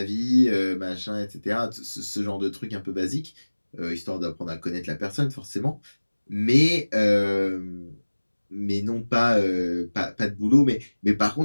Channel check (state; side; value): inverted; both; correlation -1.00